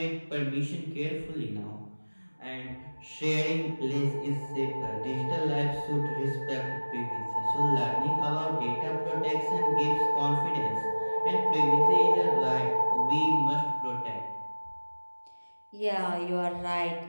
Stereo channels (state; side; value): inverted; both; correlation -1.00